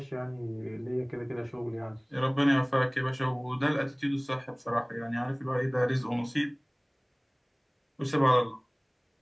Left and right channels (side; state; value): both; identical; correlation 1.00